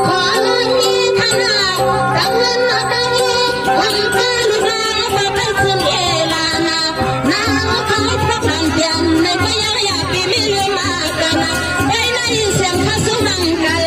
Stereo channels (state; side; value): identical; both; correlation 1.00